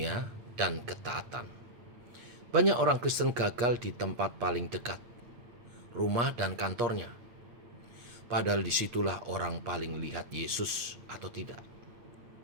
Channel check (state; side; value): late; left; 8.4 ms